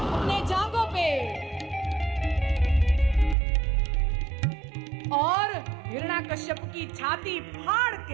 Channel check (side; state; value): left; drops out; at 3.4 s